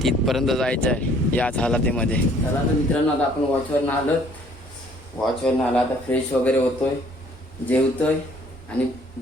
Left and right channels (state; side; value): normal; both; correlation 0.59